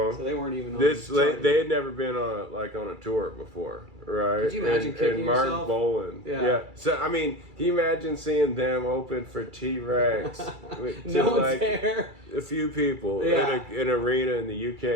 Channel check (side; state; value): left; late; 2.3 ms